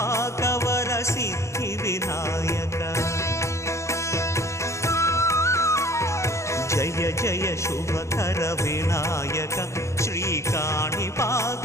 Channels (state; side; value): late; right; 0.14 ms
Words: సిద్ధి వినాయక. జయ జయ శుభకర వినాయక శ్రీకాణిపాకవర